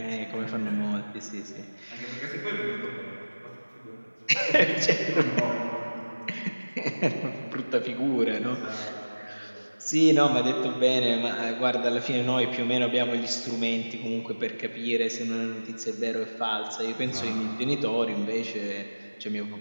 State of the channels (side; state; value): both; inverted; correlation -1.00